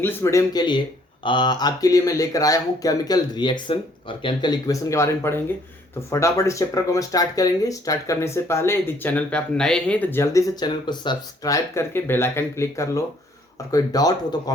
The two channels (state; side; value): normal; both; correlation 0.63